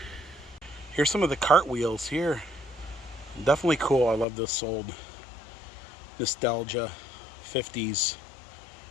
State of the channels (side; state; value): right; drops out; at 4.2 s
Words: Here's some of the cartwheels here. Definitely cool. I love this old nostalgia 50s